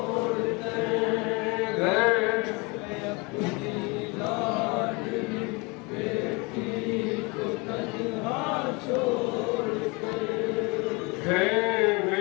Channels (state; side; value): quieter; right; 28.0 dB